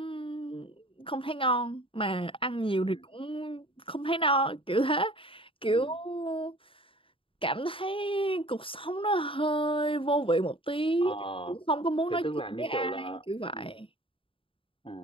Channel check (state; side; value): late; right; 0.26 ms